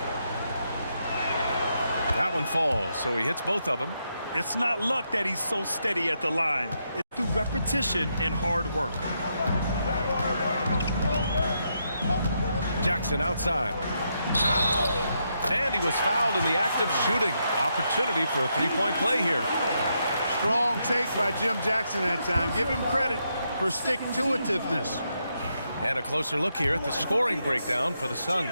That one falls, so he hits both of them. It's not luck that he's so steady at the line. It's through repetition and hard work. Jackson outside. And he was fouled in the act of shooting. Opportunity for a 3-point play here. Strong take by Jim Jackson that time. Give him credit for stick-to-itiveness. And a closer look here at the scoring breakdown for the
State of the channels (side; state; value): both; inverted; correlation -0.80